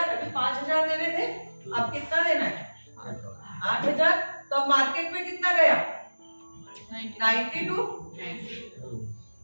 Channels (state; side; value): inverted; both; correlation -1.00